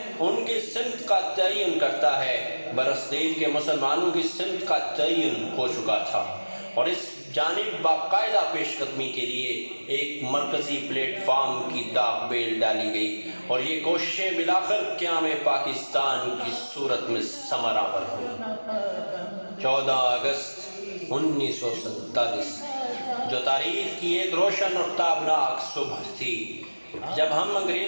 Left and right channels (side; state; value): both; inverted; correlation -1.00